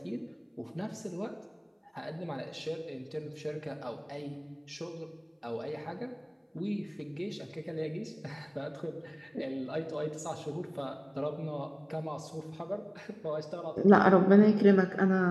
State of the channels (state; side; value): identical; both; correlation 1.00